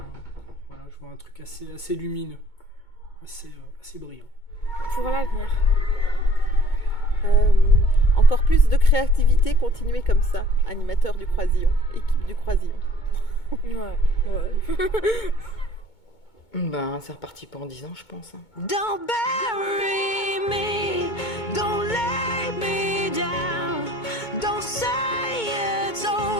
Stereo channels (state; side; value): late; right; 2.2 ms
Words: vois un truc assez lumineux, assez brillant. Pour l'avenir. Encore plus de créativité, continuer comme ça. Animateur du Croisillon, équipe du Croisillon. Ouais. C'est reparti pour 10 ans, je pense. Don't bury me, don't lay me down, don't say it's